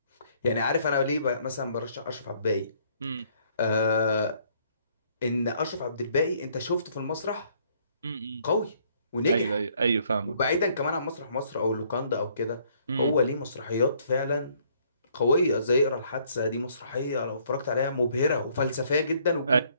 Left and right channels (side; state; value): both; inverted; correlation -0.64